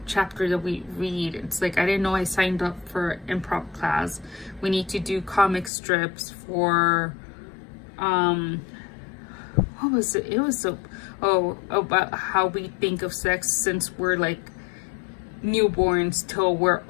chapter that we read. It's like, I didn't know I signed up for improv class. We need to do comic strips for what was it? It was about how we think of sex since we're like newborns till we're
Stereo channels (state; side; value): drops out; right; at 5.7 s